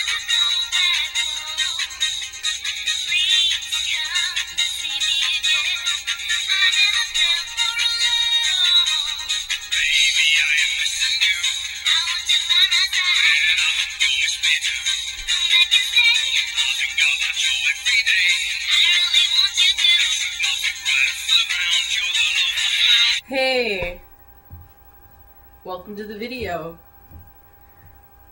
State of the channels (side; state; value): both; identical; correlation 1.00